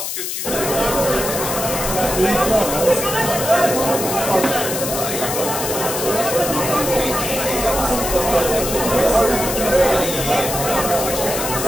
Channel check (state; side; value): noise; left; hiss, 4 dB below the sound